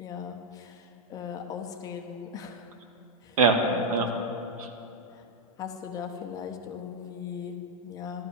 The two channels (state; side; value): normal; both; correlation 0.00